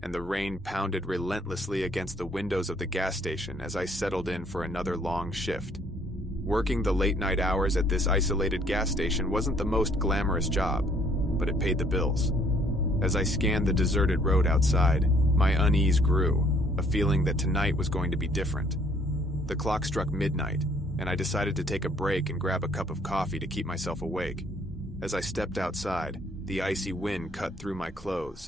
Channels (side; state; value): both; normal; correlation 0.62